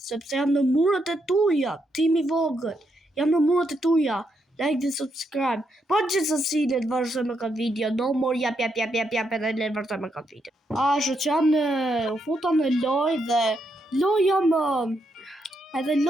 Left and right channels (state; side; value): normal; both; correlation 0.79